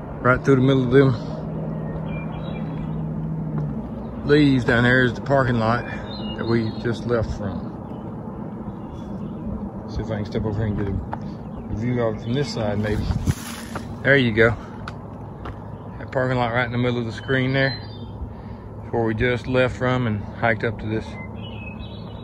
Right through the middle of them leaves down there is the parking lot that we just left from. See if I can step over here and get a view of it from this side, maybe. There you go. That parking lot right in the middle of the screen there is where we just left from and hiked up to this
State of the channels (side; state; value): both; identical; correlation 1.00